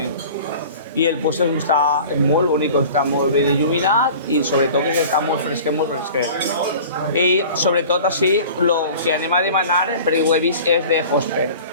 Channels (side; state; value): both; inverted; correlation -0.42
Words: I el puesto està molt bonic, està molt ben il·luminat i sobretot que està molt fresquet, molt fresquet. I sobretot així, el que anem a demanar, perquè ho he vist, és de Hosper,